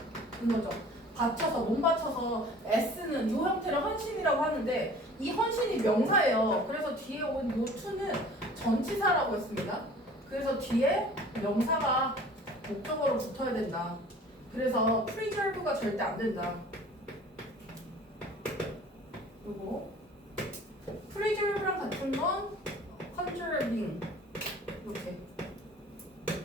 이거죠. 몸 바쳐서 애쓰는 이 형태를 헌신이라고 하는데 이 헌신이 명사예요. 그래서 뒤에 온 요 to는 전치사라고 했습니다. 그래서 뒤에 명사가 목적어로 붙어야 된다. 그래서 preserve가 절대 안 된다. 요거 preserve랑 같은 건 conserving 이렇게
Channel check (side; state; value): both; normal; correlation 0.47